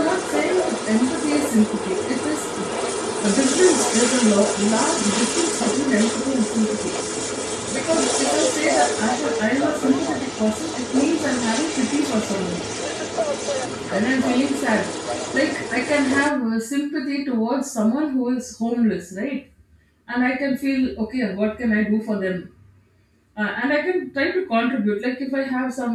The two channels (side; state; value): both; identical; correlation 1.00